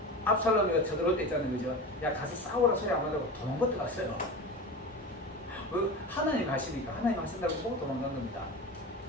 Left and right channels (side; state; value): both; normal; correlation 0.29